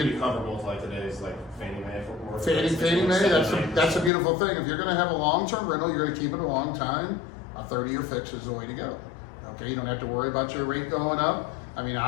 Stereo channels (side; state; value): right; drops out; at 4.1 s